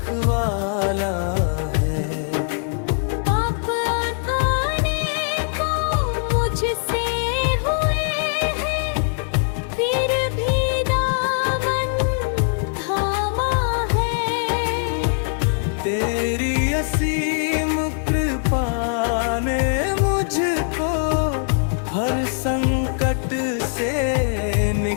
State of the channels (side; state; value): right; silent; 65 dB below the other